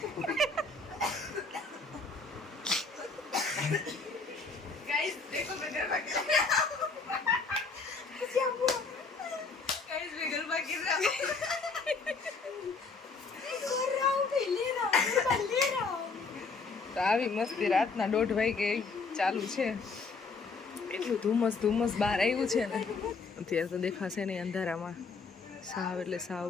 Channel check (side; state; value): right; quieter; 4.3 dB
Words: ગાઈઝ દેખો તો ગરબા ગાઈઝ મે ગરબા ગીર રહા તો આવી મસ્તી રાતના 1:30 વાગે ચાલુ છે. એટલું ધુમ્મસ બહાર આવ્યું છે ને, અત્યારે તો દેખાશે નહીં અંધારામાં. સાવ એટલે સાવ